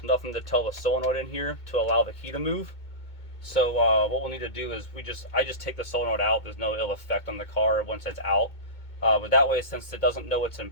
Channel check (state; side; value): late; right; 2.2 ms